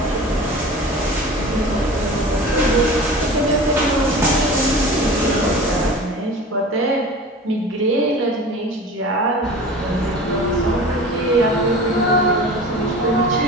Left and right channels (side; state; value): both; normal; correlation 0.37